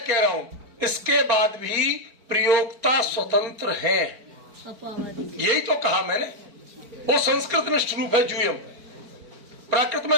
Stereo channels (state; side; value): late; left; 4.5 ms